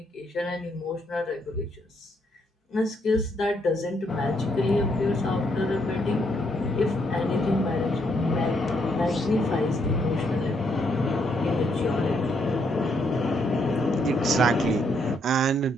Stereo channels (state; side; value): normal; both; correlation 0.74